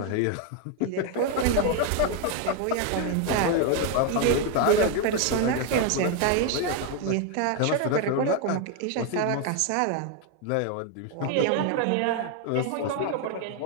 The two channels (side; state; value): both; different; correlation 0.01